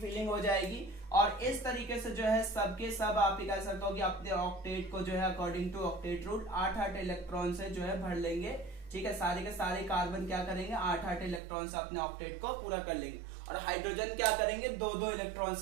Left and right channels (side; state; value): left; drops out; at 11.4 s